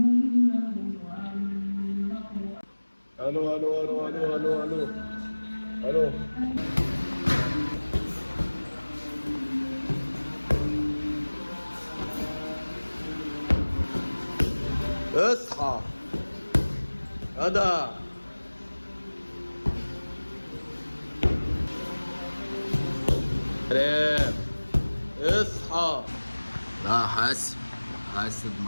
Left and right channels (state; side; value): inverted; both; correlation -1.00